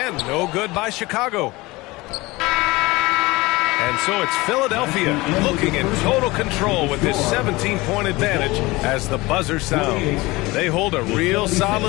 no good by Chicago. And so it's Philadelphia looking in total control with this 17-point advantage as the buzzer sounds. They hold a real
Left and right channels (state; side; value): quieter; right; 21.6 dB